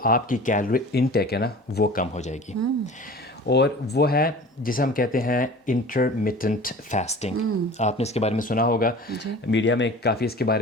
آپ کی کیلوری انٹیک ہے نا وہ کم ہو جائے گی. اور وہ ہے جسے ہم کہتے ہیں انٹرمیٹنٹ فاسٹنگ. آپ نے اس کے بارے میں سنا ہوگا, میڈیا میں کافی اس کے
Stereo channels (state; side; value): normal; both; correlation 0.41